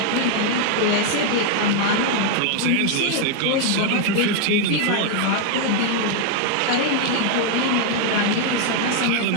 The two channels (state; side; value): different; both; correlation 0.00